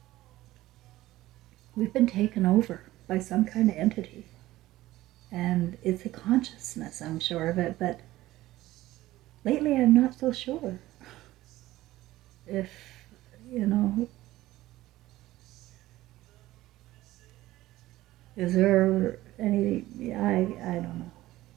We've been taken over by some kind of entity. And it's a consciousness, I'm sure of it, but lately I'm not so sure if, you know, is there any, I don't know.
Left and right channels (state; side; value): quieter; left; 16.4 dB